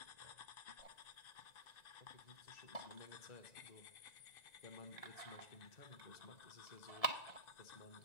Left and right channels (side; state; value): right; late; 1.9 ms